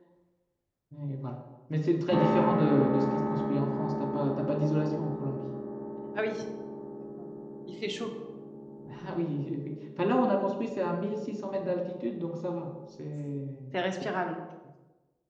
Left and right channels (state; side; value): identical; both; correlation 1.00